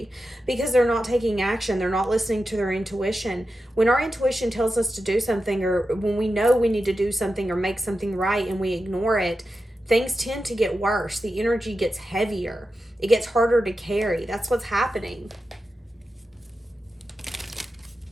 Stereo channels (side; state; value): both; normal; correlation 0.90